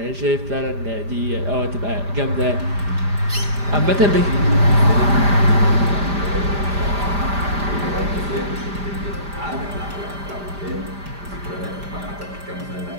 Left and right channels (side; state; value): left; late; 5.0 ms